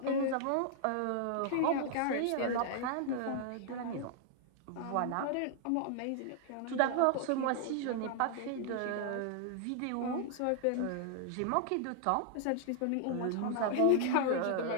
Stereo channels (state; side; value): different; both; correlation -0.01